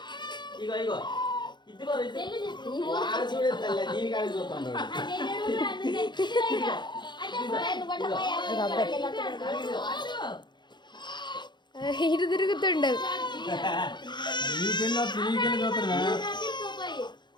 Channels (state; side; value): late; right; 0.22 ms